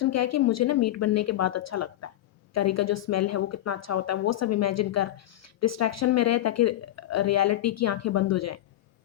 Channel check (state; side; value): quieter; right; 13.9 dB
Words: क्या है कि मुझे ना मीट बनने के बाद अच्छा लगता है। करी का जो स्मेल है वो कितना अच्छा होता है, वो सब इमेजिन कर, डिस्ट्रैक्शन में रहे ताकि रियलिटी की आँखें बंद हो जाएँ।